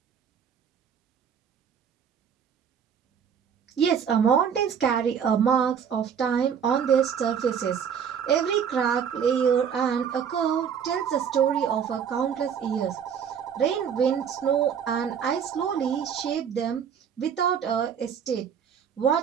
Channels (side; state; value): left; quieter; 7.7 dB